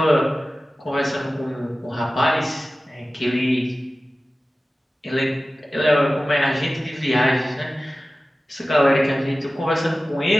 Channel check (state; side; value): normal; both; correlation 0.96